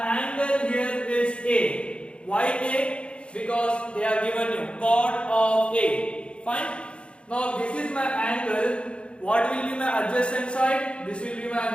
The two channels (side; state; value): right; late; 0.058 ms